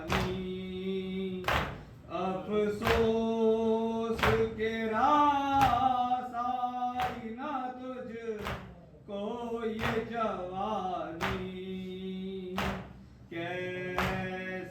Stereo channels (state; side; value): identical; both; correlation 1.00